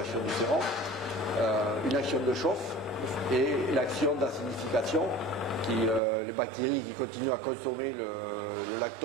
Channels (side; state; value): left; drops out; at 6.0 s